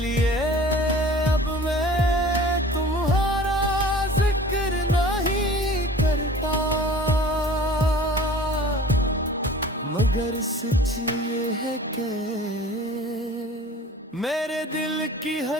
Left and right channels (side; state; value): both; normal; correlation 0.44